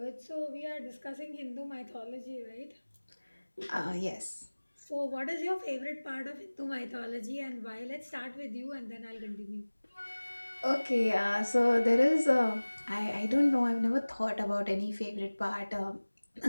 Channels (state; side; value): inverted; both; correlation -1.00